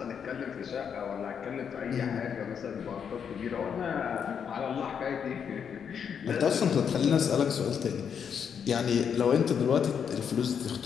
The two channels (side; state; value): right; quieter; 7.4 dB